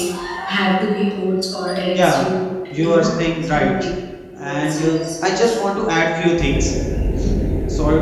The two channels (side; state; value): both; identical; correlation 1.00